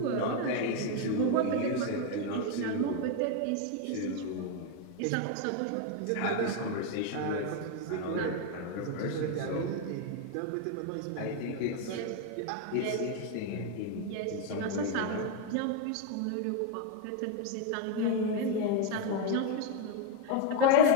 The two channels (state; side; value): different; both; correlation 0.01